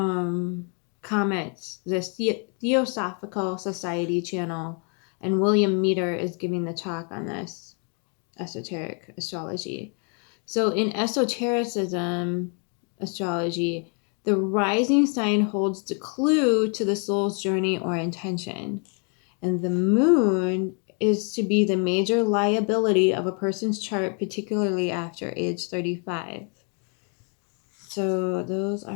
comments the Theosophical Society channel, and William Meter is giving the talk on this esoteric astrology. So, in esotericism astrology, the rising sign holds the clue to the soul's journey or intention. And the moon is to be the major liability of a person's chart, particularly after age 35. So those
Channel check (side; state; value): right; quieter; 38.9 dB